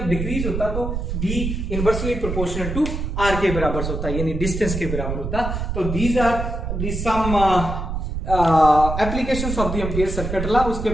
डिक्रीज होता तो B inversely proportional to R के बराबर होता है, यानी डिस्टेंस के बराबर होता। तो these are the some applications of the ampere circuit law. उसके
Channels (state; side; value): noise; right; rumble, 4 dB below the sound